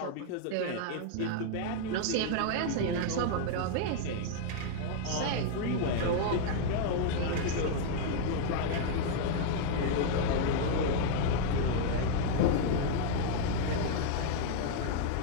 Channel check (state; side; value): different; both; correlation -0.01